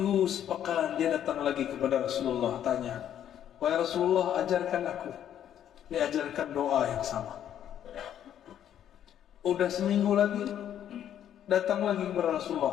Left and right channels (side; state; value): right; quieter; 10.3 dB